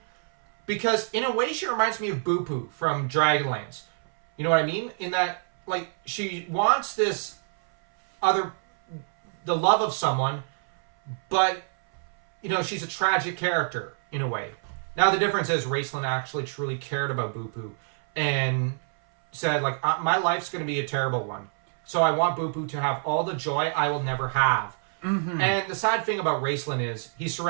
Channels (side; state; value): left; silent; 61 dB below the other